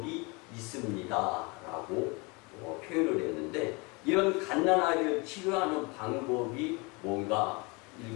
있습니다 라고 표현을 했는데, 이런 갓난 아이를 치료하는 방법이 뭔가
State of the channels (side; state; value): right; quieter; 28.2 dB